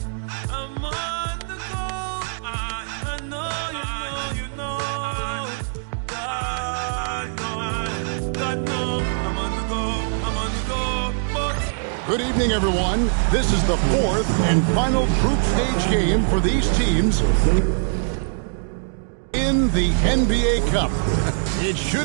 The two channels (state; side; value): silent; left; digital silence